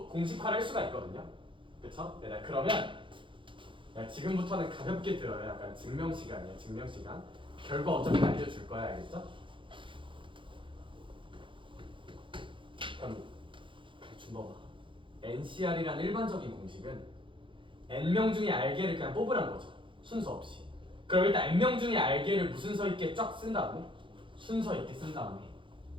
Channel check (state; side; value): late; left; 0.24 ms